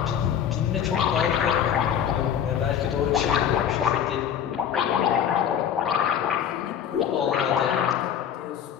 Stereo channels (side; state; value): right; quieter; 9.0 dB